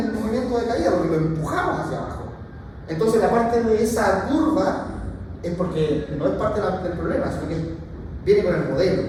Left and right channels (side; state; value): both; identical; correlation 1.00